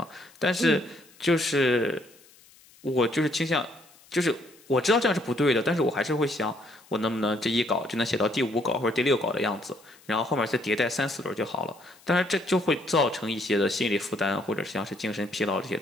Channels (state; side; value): noise; left; hiss, 27 dB below the sound